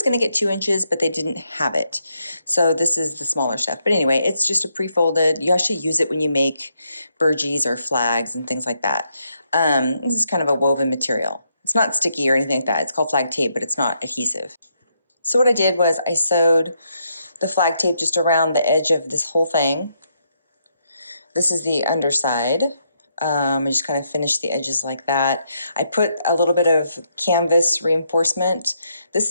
going to get 2 inches, but they didn't have it. So this is the smaller stuff. But anyway, it's just a pre-folded. You actually use it when you make burgees or flags and things like that. This is kind of a woven material. It's not sticky or anything like that. It's called flag tape, but it's not adhesive. So what I did was I sewed the flag tape just around the edge of this whole thing. This is the underside. I just kind of finished the edges like that. I put a little bit of canvas reinforcement.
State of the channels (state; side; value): inverted; both; correlation -0.77